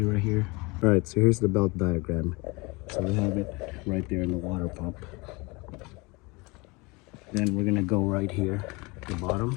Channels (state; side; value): quieter; right; 26.0 dB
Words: right here. All right, so here's the belt diagram. So we have it right there in the water pump. Then we're gonna go right here at the